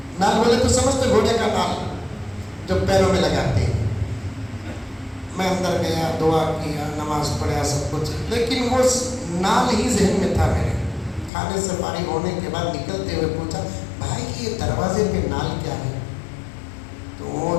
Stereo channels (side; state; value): right; drops out; at 11.3 s